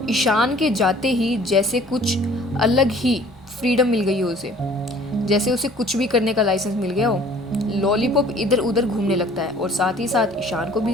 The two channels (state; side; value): normal; both; correlation 0.52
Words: ईशान के जाते ही जैसे कुछ अलग ही फ्रीडम मिल गई है उसे। जैसे उसे कुछ भी करने का लाइसेंस मिल गया हो। लॉलीपॉप इधर उधर घूमने लगता है और साथ ही साथ ईशान को